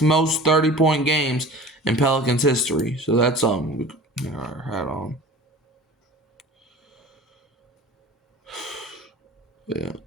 30-point games in Pelicans history. So that's we got our hat on. Yeah.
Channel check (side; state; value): both; normal; correlation 0.40